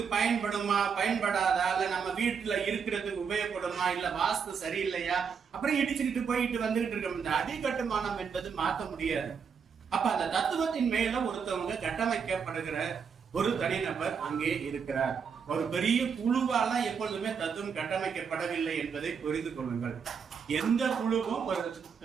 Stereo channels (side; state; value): left; quieter; 6.4 dB